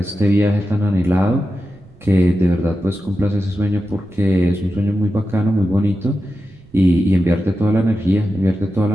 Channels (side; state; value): right; noise; rumble, 28 dB below the sound